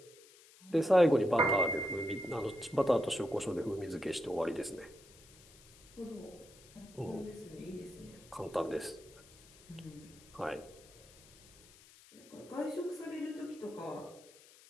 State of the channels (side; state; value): left; noise; hiss, 23 dB below the sound